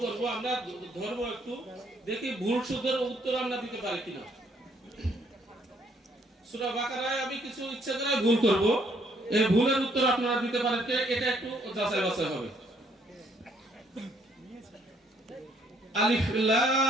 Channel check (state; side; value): normal; both; correlation 0.67